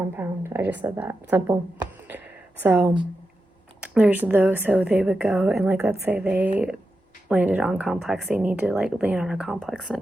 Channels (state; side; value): normal; both; correlation 0.89